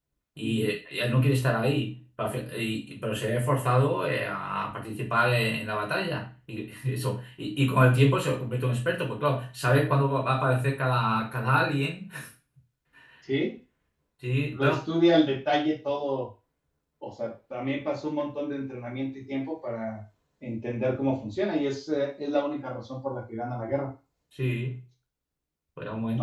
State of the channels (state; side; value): identical; both; correlation 1.00